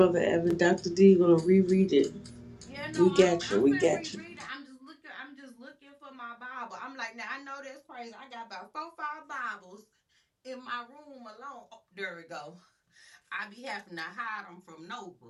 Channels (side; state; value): both; identical; correlation 1.00